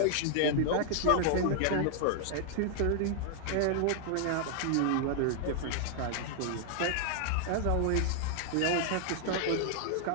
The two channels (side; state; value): both; different; correlation 0.00